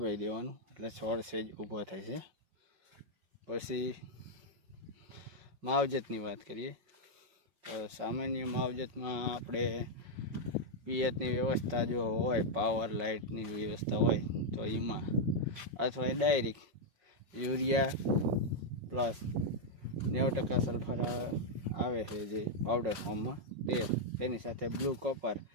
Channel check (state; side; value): late; left; 5.5 ms